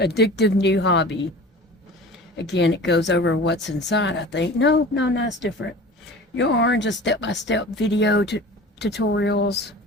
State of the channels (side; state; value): both; normal; correlation 0.39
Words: new hobby. Again, it goes over what's inside, I think. No, it's different. Yarn, just step-by-step video tutorials.